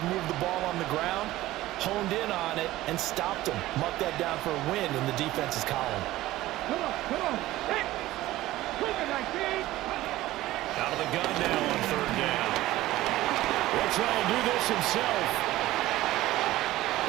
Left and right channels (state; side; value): quieter; left; 16.3 dB